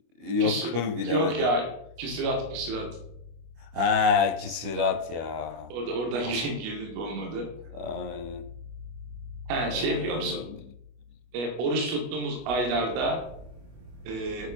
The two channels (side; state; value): left; late; 25 ms